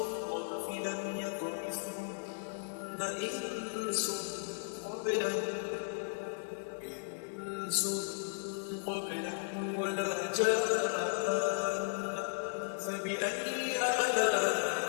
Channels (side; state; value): right; silent; digital silence